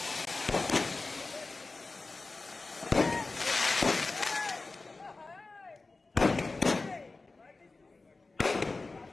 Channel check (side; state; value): right; quieter; 3.6 dB